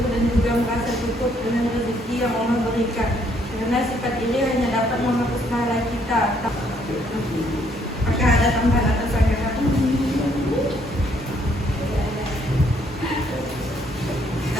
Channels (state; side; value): normal; both; correlation 0.68